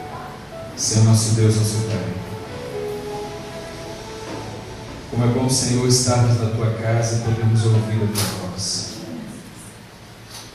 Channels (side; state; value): both; identical; correlation 1.00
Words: Senhor nosso Deus, nosso Pai, como é bom, Senhor, estarmos na Tua casa e podermos ouvir a Tua voz.